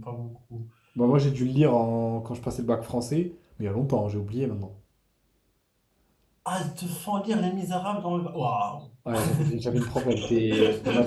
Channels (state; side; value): identical; both; correlation 1.00